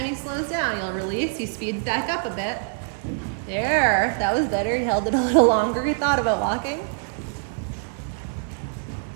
he slows down, you'll release. He speeds back up a bit. There, that was better. He held it a little longer. He thought about walking.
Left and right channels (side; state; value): left; silent; 62 dB below the other